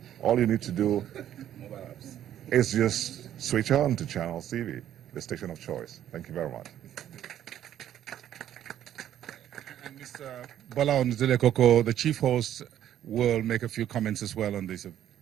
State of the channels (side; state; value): left; quieter; 11.2 dB